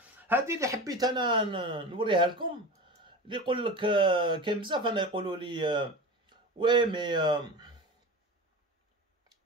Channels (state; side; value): normal; both; correlation 0.30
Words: هذه اللي حبيت انا نوريها لكم. اللي يقول لك كاين بزاف انا يقولوا لي وي مي